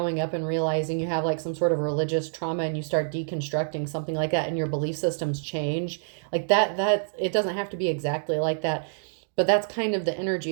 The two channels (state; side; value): silent; left; digital silence